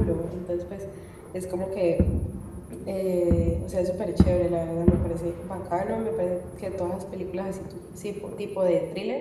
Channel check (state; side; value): identical; both; correlation 1.00